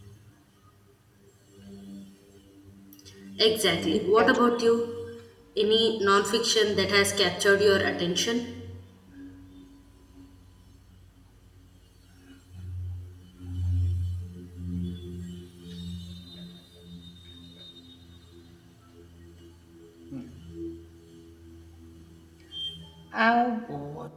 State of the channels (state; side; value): identical; both; correlation 1.00